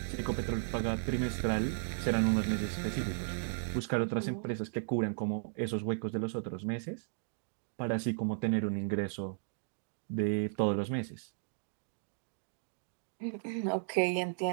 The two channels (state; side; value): silent; left; digital silence